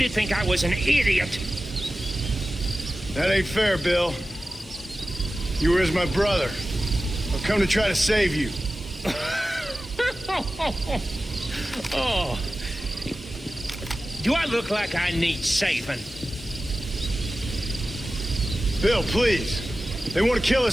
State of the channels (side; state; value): both; normal; correlation 0.94